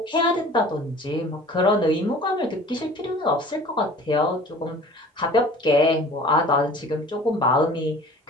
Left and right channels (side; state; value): both; normal; correlation 0.45